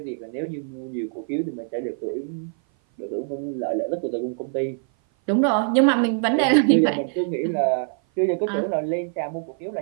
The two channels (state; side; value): silent; left; 56 dB below the other